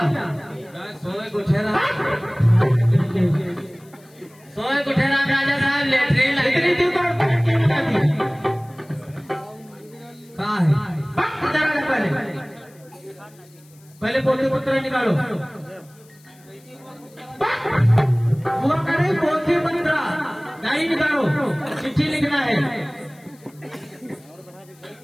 सोए गुठेरा राजा साहब लेटरिन इतनी दूर कहाँ है? पहले पोते पुत्र निकालो। वो करे पोते पुत्र नहीं निकालो, चिट्ठी लिखना है।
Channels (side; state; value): left; noise; hiss, 28 dB below the sound